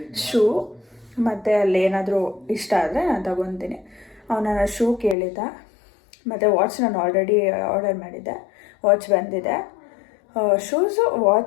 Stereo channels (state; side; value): drops out; right; at 5.2 s